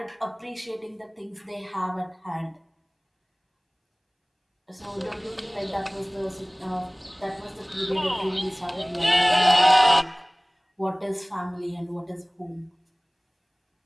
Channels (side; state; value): both; identical; correlation 1.00